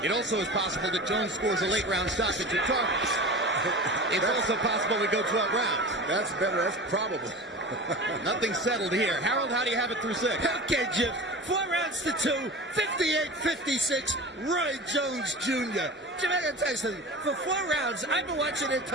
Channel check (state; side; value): normal; both; correlation 0.33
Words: It also is possible that Jones scores a late round stoppage of Tarver. It's also possible we go 12 rounds. That's better. That's probable. Nothing settled here. Harold, how do you have it through 6? Okay, Jim. 4 rounds to 2, 58-56, Roy Jones Jr. Jim, I gotta tell you something. For 4 rounds, I've been watching